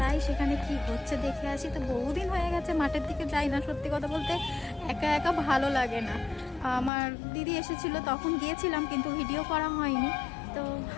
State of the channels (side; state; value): right; drops out; at 6.9 s